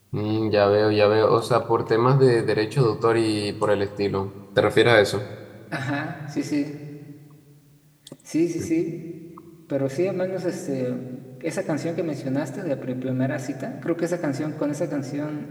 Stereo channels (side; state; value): both; identical; correlation 1.00